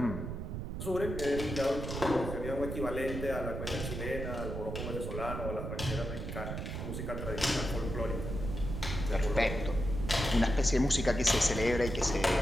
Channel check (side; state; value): right; noise; rumble, 5 dB below the sound